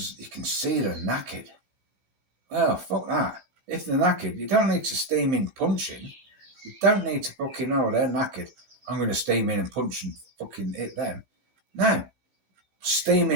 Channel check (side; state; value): left; late; 16 ms